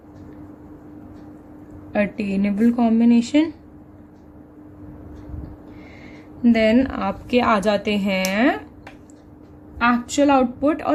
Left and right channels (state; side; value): identical; both; correlation 1.00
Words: attainable combination. Then आपके आ जाते हैं एक्चुअल आउटपुट और